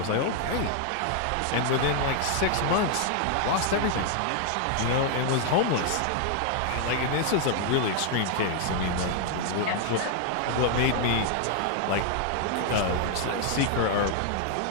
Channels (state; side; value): different; both; correlation 0.00